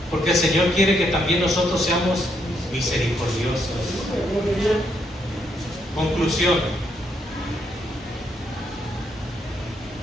porque el Señor quiere que también nosotros seamos misericordiosos. Conclusión.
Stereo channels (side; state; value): both; normal; correlation 0.76